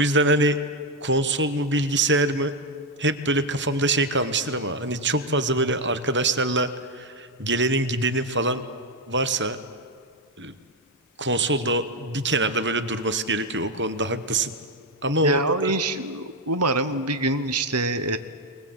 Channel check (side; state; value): both; normal; correlation 0.06